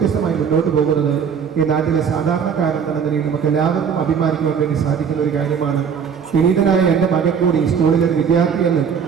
മുന്നോട്ട് പോകുന്നത് ഈ നാട്ടിലെ സാധാരണക്കാരെന്ന നിലയിൽ നമുക്ക് എല്ലാവർക്കും അഭിമാനിക്കുവാൻ വേണ്ടി സാധിക്കുന്ന ഒരു കാര്യമാണ്. വിനീതനായ എൻ്റെ മകൻ കൂടി ഈ സ്കൂളിലെ ഒരു വിദ്യാർത്ഥിയെന്ന്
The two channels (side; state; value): left; quieter; 7.0 dB